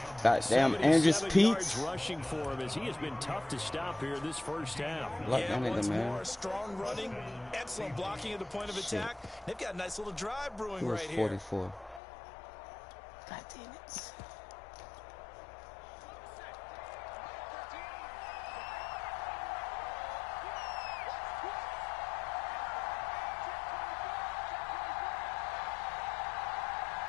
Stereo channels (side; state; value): right; drops out; at 12.0 s